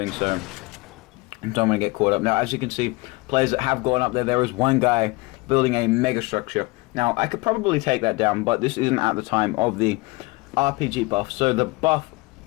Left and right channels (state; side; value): quieter; right; 24.0 dB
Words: so. Don't want to get caught up. Now, as you can see, players that have gone up there, there is one guy building a mega structure. Now, I could probably take that down, but this isn't at the time of the RPG buff. So the